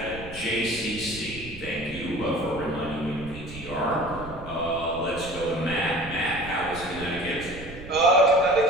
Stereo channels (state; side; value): noise; right; rumble, 14 dB below the sound